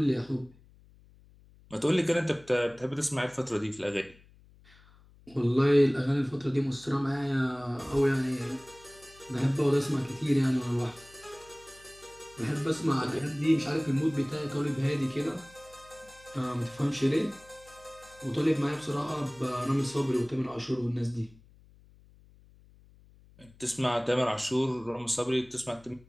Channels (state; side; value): noise; left; hum, 26 dB below the sound